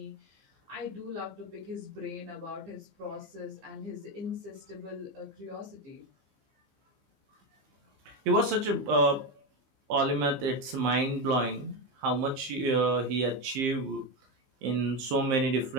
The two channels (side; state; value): left; late; 15 ms